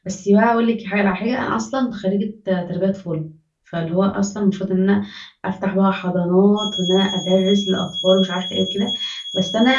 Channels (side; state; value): both; identical; correlation 1.00